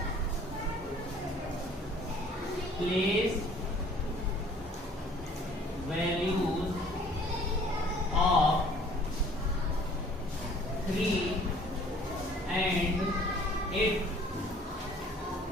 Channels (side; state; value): both; normal; correlation 0.54